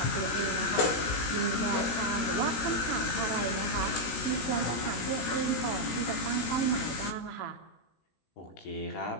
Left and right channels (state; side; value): late; right; 17 ms